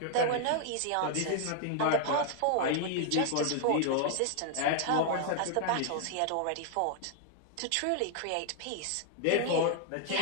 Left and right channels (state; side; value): different; both; correlation 0.00